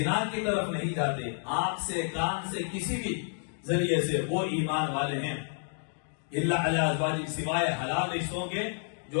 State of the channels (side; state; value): right; silent; 58 dB below the other